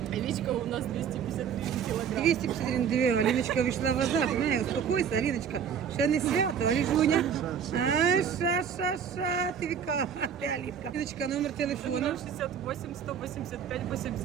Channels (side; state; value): left; quieter; 7.6 dB